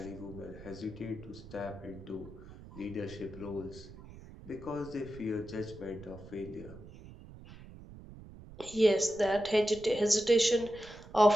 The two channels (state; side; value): noise; right; rumble, 17 dB below the sound